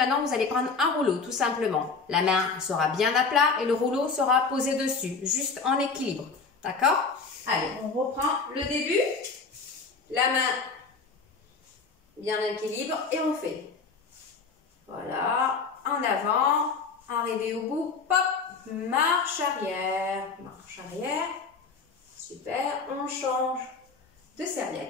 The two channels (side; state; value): right; quieter; 4.7 dB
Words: vous allez prendre un rouleau, tout simplement. La main sera bien à plat et le rouleau sera posé dessus, juste en équilibre. D'accord? Allez, on reprend le début. La main bien en équilibre et on fait. Voilà. En avant, arrivé au bout, pop, marche arrière, super, on change de